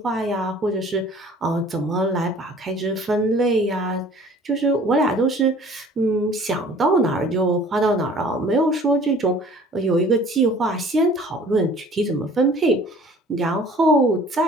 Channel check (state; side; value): normal; both; correlation 0.51